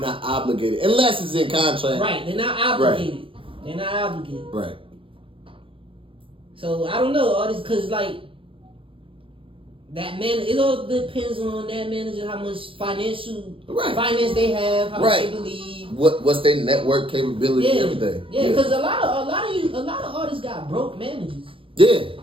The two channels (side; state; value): left; late; 0.26 ms